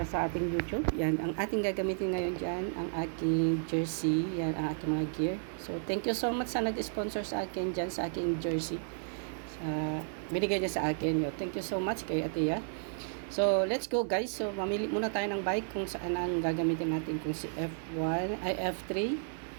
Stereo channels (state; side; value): silent; left; digital silence